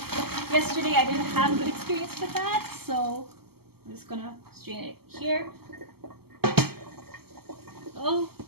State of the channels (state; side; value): late; left; 0.96 ms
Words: yesterday I didn't have a good experience with that, so I'm just going to strain it here. Oh,